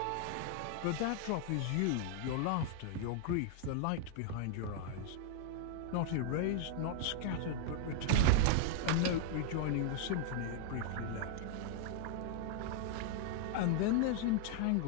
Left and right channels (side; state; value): both; different; correlation 0.00